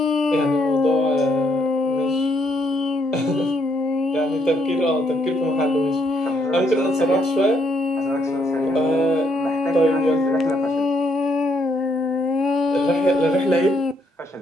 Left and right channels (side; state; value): both; normal; correlation 0.73